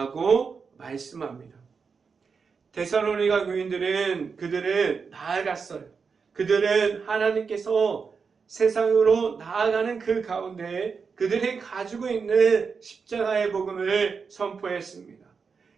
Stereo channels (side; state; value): left; quieter; 5.4 dB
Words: 말씀합니다. 데살로니가 교인들은 그들은 나아갔어요. 그들은 하나님께서 세상으로 나아가는 그 가운데 그들이 가지고 있는 십자가의 복음을 선포했습니다.